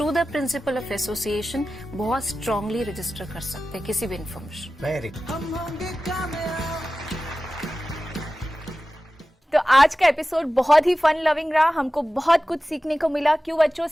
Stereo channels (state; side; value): normal; both; correlation 0.95